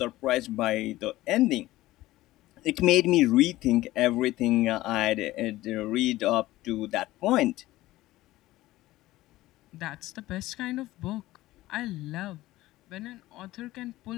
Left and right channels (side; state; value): right; quieter; 16.9 dB